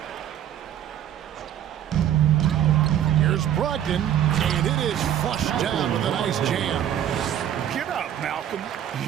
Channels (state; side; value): quieter; left; 10.5 dB